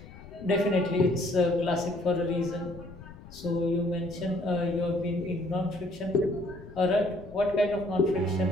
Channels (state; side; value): noise; left; rumble, 17 dB below the sound